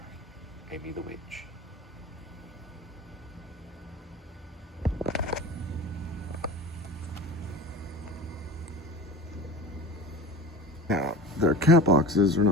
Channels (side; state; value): both; normal; correlation 0.33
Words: Amy the Witch. Now, their cat boxes are